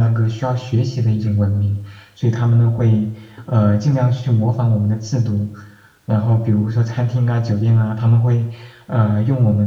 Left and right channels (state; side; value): identical; both; correlation 1.00